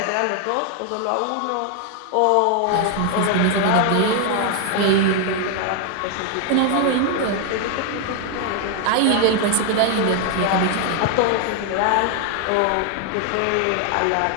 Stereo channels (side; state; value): both; different; correlation 0.00